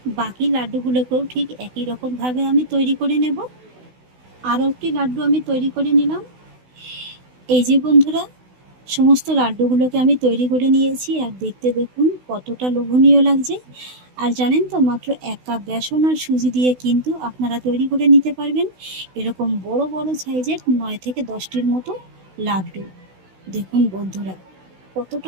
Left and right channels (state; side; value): late; left; 16 ms